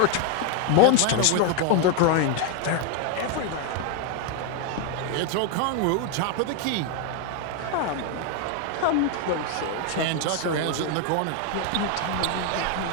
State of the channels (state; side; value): different; both; correlation 0.01